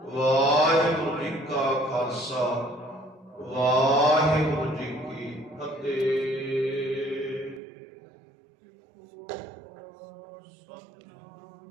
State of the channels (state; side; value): drops out; left; at 7.6 s